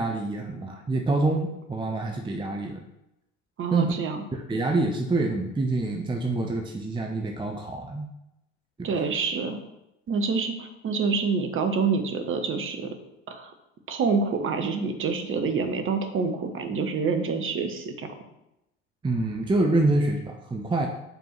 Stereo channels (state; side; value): quieter; left; 3.2 dB